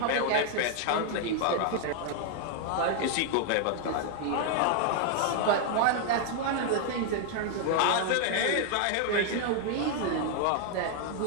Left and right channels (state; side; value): different; both; correlation 0.00